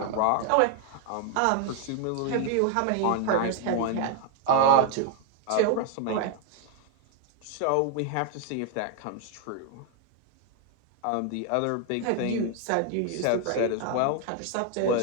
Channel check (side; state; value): both; different; correlation 0.00